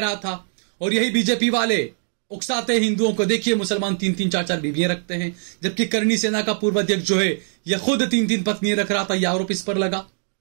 था। और यही बीजेपी वाले उकसाते हिंदुओं को, देखिए मुसलमान 3-3 4-4 बीवियां रखते हैं, जबकि करनी सेना का पूर्व अध्यक्ष जो है यह खुद 3-3 पत्नियां रख रहा था। यह आरोप इस पर लगा,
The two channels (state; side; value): silent; left; 61 dB below the other